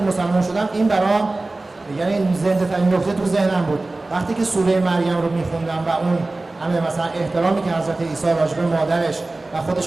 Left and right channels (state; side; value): quieter; left; 3.1 dB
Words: مسلمان شدم این برام یعنی زنده ترین نکته تو ذهنم بود. وقتی که سوره مریم رو میخوندم و اون همه مثلا احترامی که حضرت عیسی راجع به مادرش و